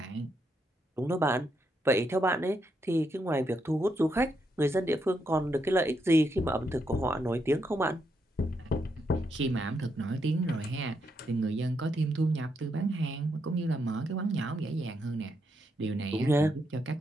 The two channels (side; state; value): both; normal; correlation 0.80